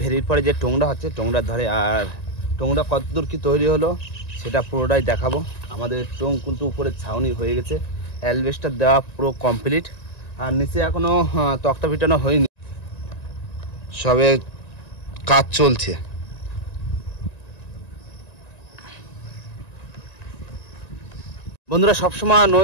পরে যে টোংরা হচ্ছে টোংরার ধারে। আর টোংরা কতদূর কি তৈরি হলো সেটা পুরোটাই দেখাবো। আমাদের টোং কিন্তু উপরে ছাউনি হয়ে গেছে, অ্যালবেস্টার দেওয়া পুরো কমপ্লিট, আর নিচে এখনো তক্তা পিটানো হয়নি, সবে কাজ চলছে। বন্ধুরা সবসময়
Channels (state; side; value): late; right; 1.9 ms